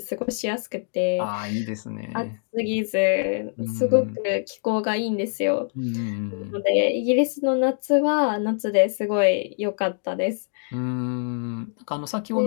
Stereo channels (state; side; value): silent; right; 62 dB below the other